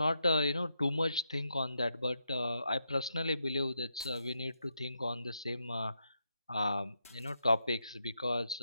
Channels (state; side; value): inverted; both; correlation -0.82